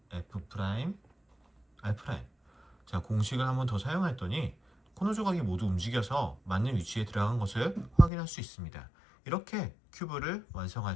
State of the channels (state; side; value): drops out; right; at 8.1 s